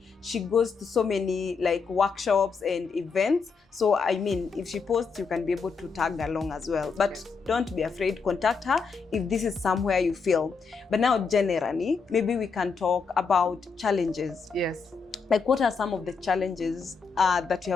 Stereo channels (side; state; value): right; quieter; 5.2 dB